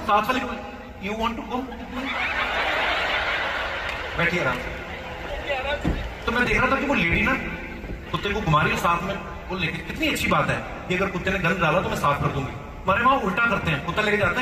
साथ वाली को, यू वांट टू कम, बैठिए आराम से। तो मैं देख रहा था कि वो लेडी ना कुत्ते को घुमा रही है साथ में, वो लेके, कितनी अच्छी बात है कि अगर कुत्ते ने गंद डाला तो मैं साफ कर दूंगी। हमारे वहां उल्टा करते हैं, कुत्ता लेके जाते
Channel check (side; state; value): both; identical; correlation 1.00